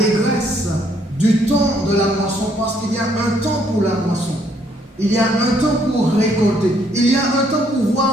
du temps de la moisson, parce qu'il y a un temps pour la moisson, il y a un temps pour récolter, il y a un temps pour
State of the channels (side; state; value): both; normal; correlation 0.68